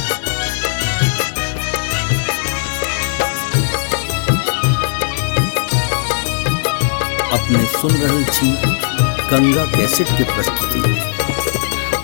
अपने सुन रहे छी गंगा कैसेट के प्रस्तुति।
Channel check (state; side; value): silent; right; digital silence